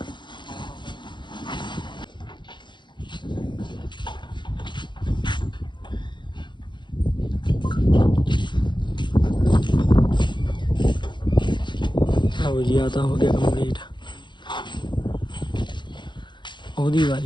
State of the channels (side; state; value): right; late; 0.22 ms